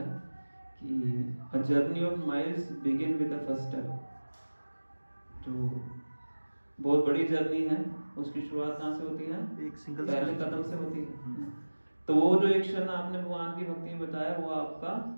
कि a journey of miles begin with the first step. जो बहुत बड़ी जर्नी है उसकी शुरुआत कहाँ से होती है? एक सिंगल पहले कदम से होती है। तो वो जो एक क्षण आपने भगवान की भक्ति में बताया वो आपका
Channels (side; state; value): both; inverted; correlation -1.00